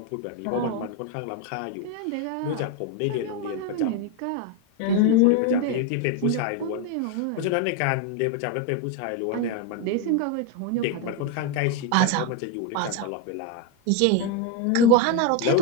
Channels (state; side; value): different; both; correlation 0.02